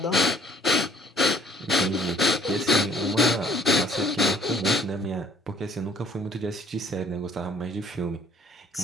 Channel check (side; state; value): both; normal; correlation 0.58